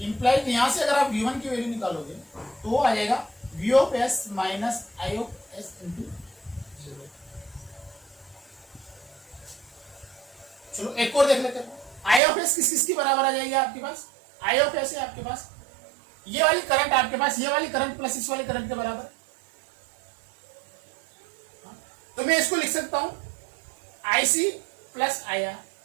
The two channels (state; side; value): drops out; left; at 12.2 s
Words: इंप्लाइड यहां से अगर आप V1 की वैल्यू निकालोगे तो वो आ जाएगा V of S minus I of S into. चलो एक और देख लेते हैं, I ऑफ S किस किसकी बराबर आ जाएगी आपके पास, I ऑफ S है आपके पास ये वाली करंट, आपके पास ये वाली करंट प्लस इस वाली करंट के बराबर, तो मैं इसको लिख सकता हूं IC प्लस IR।